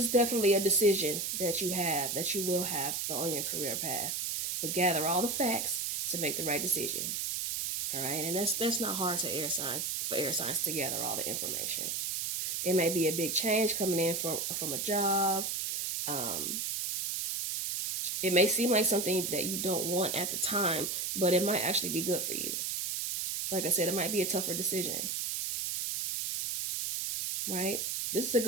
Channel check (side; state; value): right; noise; hiss, 1 dB below the sound